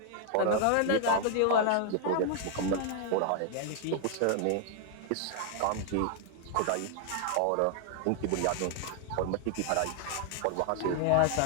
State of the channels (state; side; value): different; both; correlation 0.00